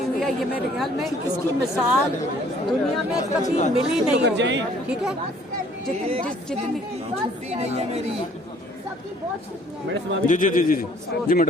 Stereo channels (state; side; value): normal; both; correlation 0.58